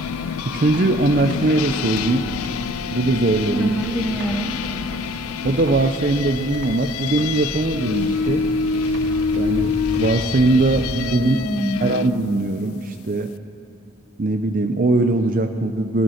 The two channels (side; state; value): both; normal; correlation 0.55